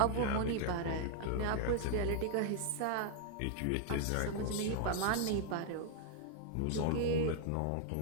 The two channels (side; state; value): both; different; correlation 0.00